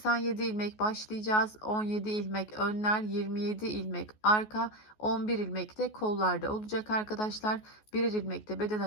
ilmek başlayacağız. 17 ilmek önler, 27 ilmek arka, 11 ilmek de kollarda olacak arkadaşlar. Birer ilmek de beden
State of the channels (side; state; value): right; late; 14 ms